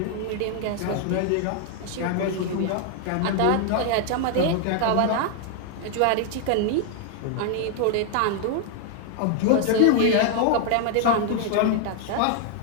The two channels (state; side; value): different; both; correlation 0.00